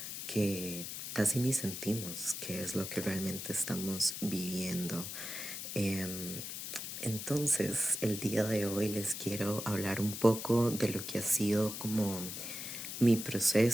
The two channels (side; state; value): left; noise; hiss, 6 dB below the sound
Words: que casi ni sentimos qué es lo que realmente estamos viviendo. Em, entonces, el día de hoy les quiero hablar un poco de lo que ha sido como mi